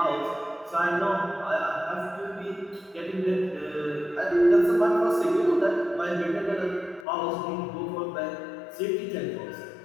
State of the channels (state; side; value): drops out; right; at 7.1 s